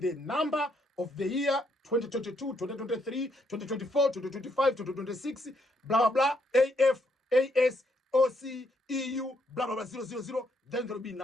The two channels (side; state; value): both; normal; correlation 0.74